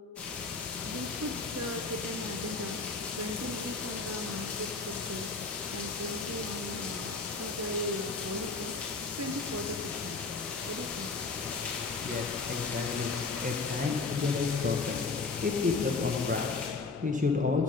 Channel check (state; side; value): quieter; right; 4.1 dB